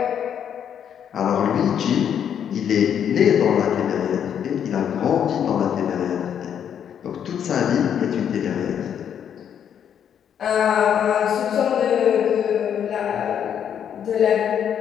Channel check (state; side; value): quieter; right; 8.8 dB